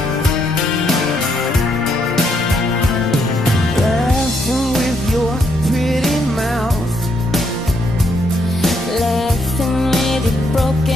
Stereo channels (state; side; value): normal; both; correlation 0.74